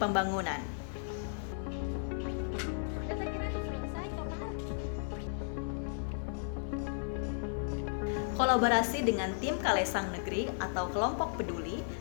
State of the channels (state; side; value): silent; right; 55 dB below the other